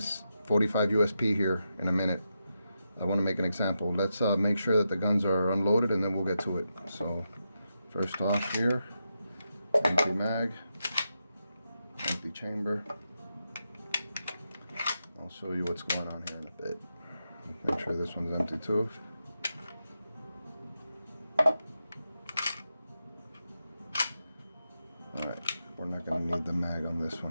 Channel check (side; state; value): both; inverted; correlation -0.86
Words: 45 USP here in a minute. I want to make an example. Let's make sure that the guns are unloaded and then we'll get to it. So first off here, empty mag, empty chamber. I'll show you what's going on here in a bit. Make sure this one's empty too. Alright, we're not going to need the mag on this